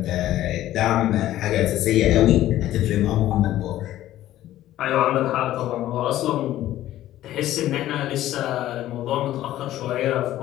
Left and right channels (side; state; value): right; quieter; 13.8 dB